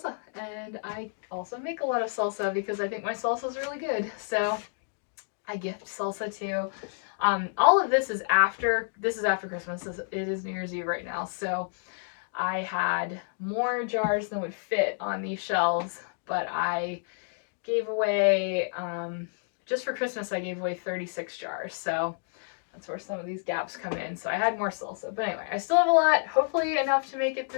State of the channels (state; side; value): silent; right; digital silence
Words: and I also make a lot of salsa because I think my salsa is really good. So I gift salsa too. All of this is after Christmas. It is New Year's Eve right now, so I had more jars than would fit on these shelves, but I gave away, just for Christmas, I gave away 36 jars. So that's where some of these gaps come in. So I had more salsa. But anyway, I still have a lot, hopefully enough to make it